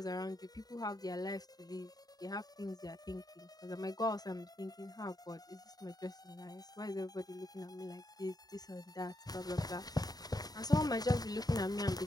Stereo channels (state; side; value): late; right; 0.19 ms